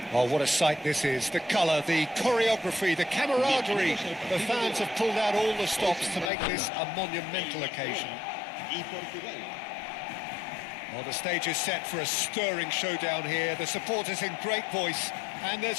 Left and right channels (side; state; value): right; drops out; at 6.3 s